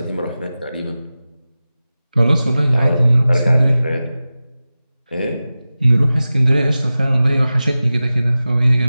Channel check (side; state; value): both; inverted; correlation -0.96